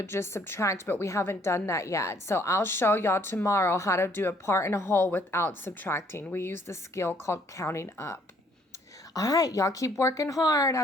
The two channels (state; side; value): normal; both; correlation 0.64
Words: just subtract, but we haven't done that yet. So I'll show y'all tomorrow how to do a part and a whole without subtracting. We use the skill called counting up. All right, y'all keep working hard.